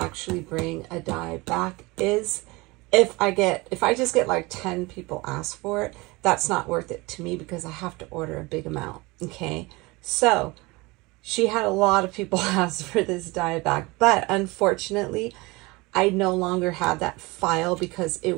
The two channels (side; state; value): left; quieter; 23.7 dB